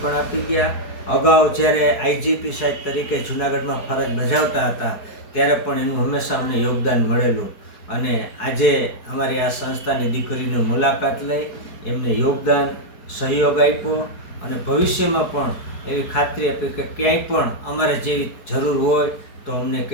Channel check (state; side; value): late; right; 4.6 ms